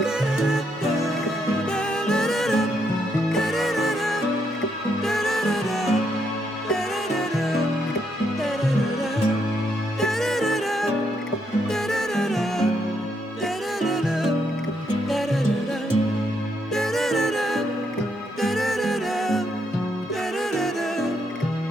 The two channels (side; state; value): both; normal; correlation 0.77